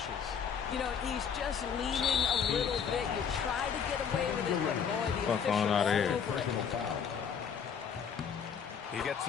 You know, he's just leaning a little bit. You try to get away with it, but boy, the Fuck on out of here. over it. He gets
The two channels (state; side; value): quieter; right; 7.1 dB